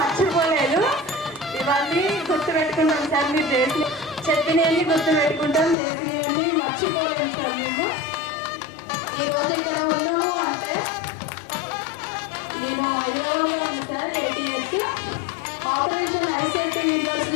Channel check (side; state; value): right; drops out; at 5.8 s